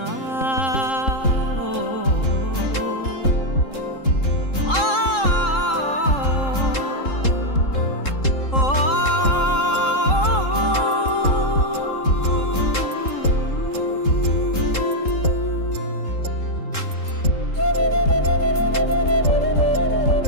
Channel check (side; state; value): right; late; 3.7 ms